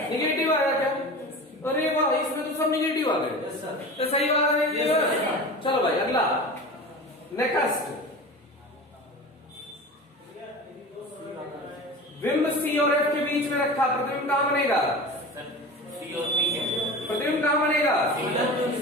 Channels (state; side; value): normal; both; correlation 0.33